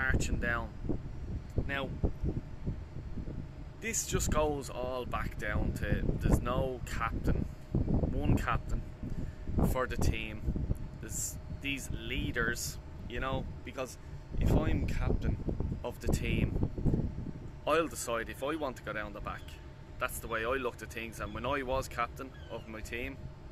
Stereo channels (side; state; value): both; identical; correlation 1.00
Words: down. Now, this just goes all back down to there's no captain, one captain for the team. There's these leaders, you know, because if I'm captain of the team, I'll decide if I want to go down the back. That's the way I looked at things, and when I was captain of my team,